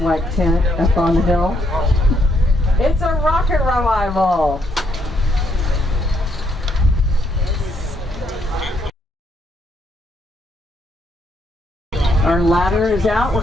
tent up on the hill. It's a rocket revival. Our ladder is out. We're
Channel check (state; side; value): normal; both; correlation 0.74